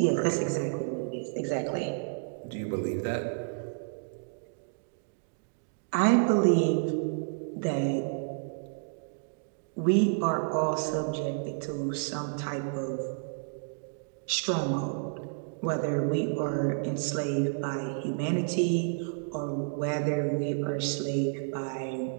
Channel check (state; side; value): silent; left; digital silence